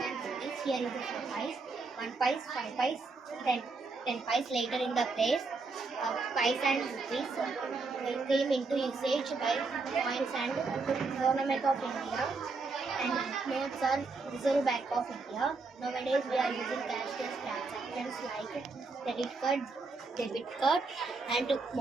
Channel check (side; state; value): left; quieter; 4.0 dB